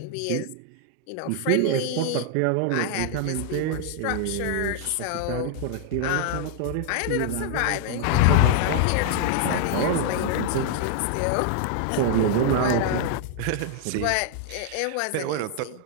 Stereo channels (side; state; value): both; different; correlation -0.01